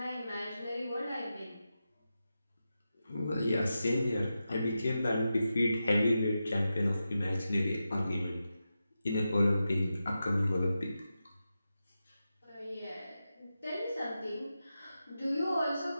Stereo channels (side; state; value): both; inverted; correlation -0.90